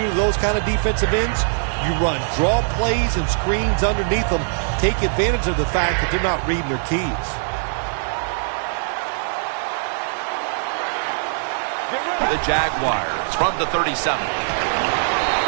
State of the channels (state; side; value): silent; left; digital silence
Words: do to those kind of defensive ends? You run draw plays and screens underneath them. Take advantage of the fact that they're not reading their keys. The Jaguars from the 37.